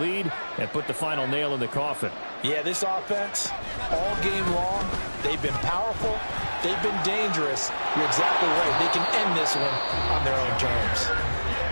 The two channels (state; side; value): inverted; both; correlation -1.00